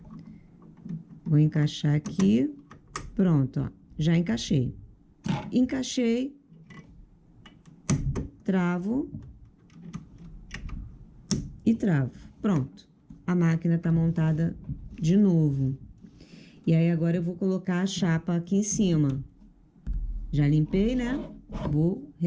Vou encaixar aqui. Pronto, ó. Já encaixei. Encaixei. Travo. E travo. Pronto. A máquina tá montada de novo. E aí, agora eu vou colocar a chapa aqui em cima. Já limpei, né? Vou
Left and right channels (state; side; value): identical; both; correlation 1.00